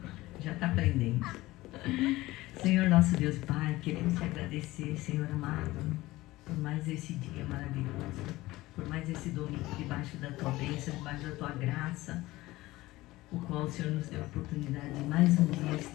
Já está aprendendo. Senhor nosso Deus e Pai, queremos te agradecer, Senhor amado, por mais esse dia maravilhoso, por mais esse domingo debaixo da tua bênção, debaixo da tua graça, o qual o Senhor nos deu a oportunidade de mais um dia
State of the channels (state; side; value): quieter; right; 18.5 dB